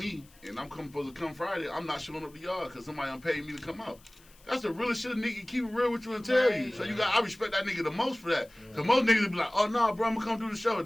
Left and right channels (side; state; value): left; noise; hiss, 27 dB below the sound